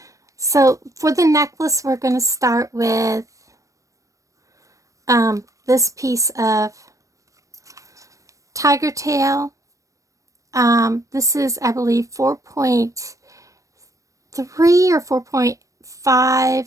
So for the necklace, we're going to start with this piece of tiger tail. This is, I believe, 4.3 or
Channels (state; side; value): late; left; 0.16 ms